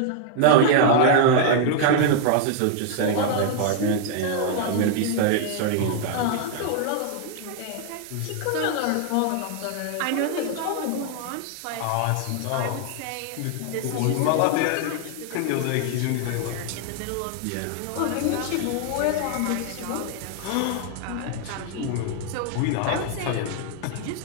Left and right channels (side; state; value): both; different; correlation 0.00